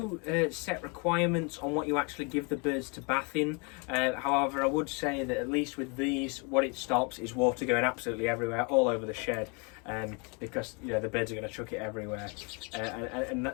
set requirements on what you actually give the birds to bath in. However, I would say that at least with these, what it stops is water going absolutely everywhere, all over the shed, because the birds are going to chuck it everywhere, and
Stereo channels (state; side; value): quieter; right; 33.4 dB